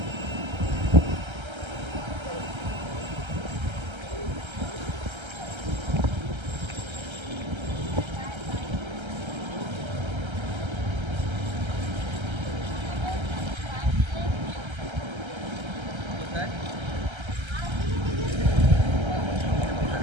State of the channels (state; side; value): late; left; 1.3 ms